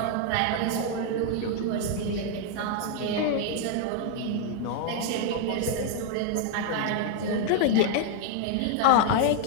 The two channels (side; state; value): both; different; correlation 0.00